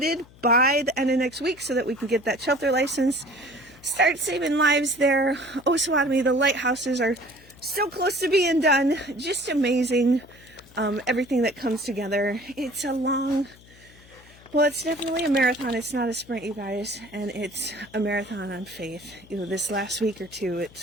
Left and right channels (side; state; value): left; noise; hum, 24 dB below the sound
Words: by the end of next week so that we can get that shelter license, start saving lives there. Osawatomie, the lighthouses are so close to being done. Just amazing, everything that comes together. It's a long... Well, it's definitely a marathon. It's not a sprint, you guys, and it's a marathon on faith. You know, this last week or two, it's